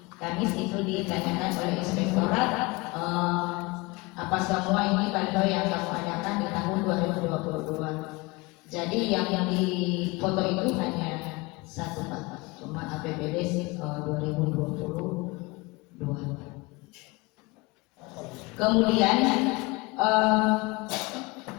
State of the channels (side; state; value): right; quieter; 24.3 dB